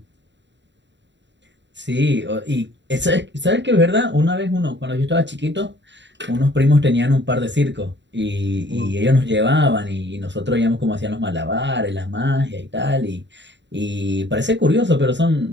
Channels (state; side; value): late; left; 0.52 ms